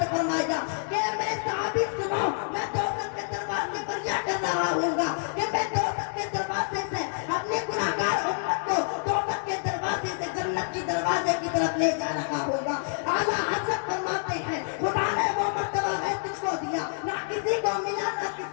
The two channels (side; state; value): right; silent; digital silence